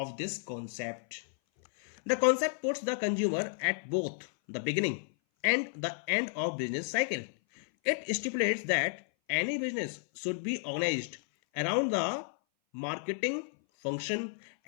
this concept. The concept puts the consumer at both the beginning and the end of business cycle. It stipulates that any business should be organized around the marketing function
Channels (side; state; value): right; silent; 56 dB below the other